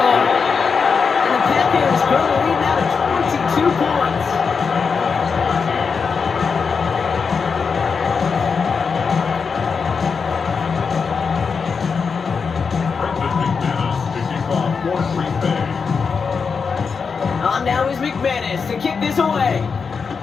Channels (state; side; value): quieter; right; 5.5 dB